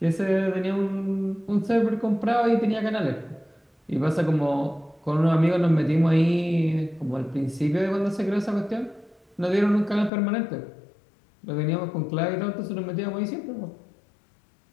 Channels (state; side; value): drops out; right; at 10.1 s